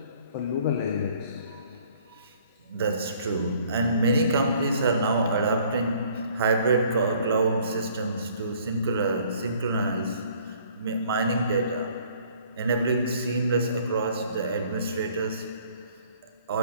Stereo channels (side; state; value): both; inverted; correlation -0.58